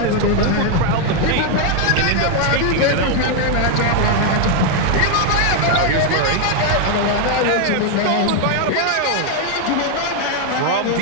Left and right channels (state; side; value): different; both; correlation 0.01